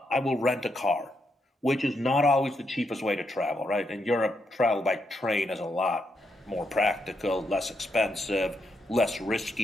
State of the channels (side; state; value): both; normal; correlation 0.80